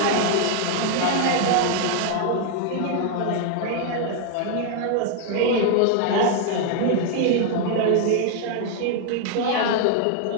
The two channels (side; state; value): both; different; correlation 0.00